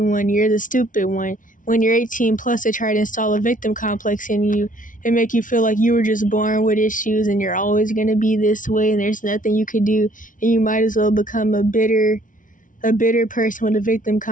you're the stupid one. When you're 18 plus, they try to install a victim complex in you and make you feel like you were just born with issues and you're always going to be this way and there's nothing you could do, and you might as well become a bitter person with a victim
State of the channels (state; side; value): late; right; 0.38 ms